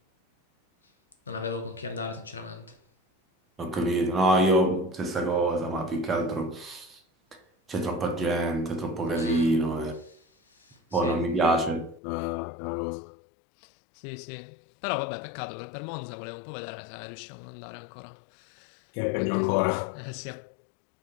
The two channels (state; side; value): drops out; right; at 12.0 s